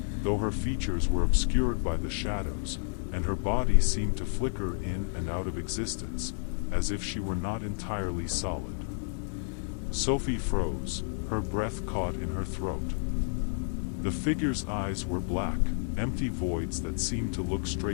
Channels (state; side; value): silent; right; digital silence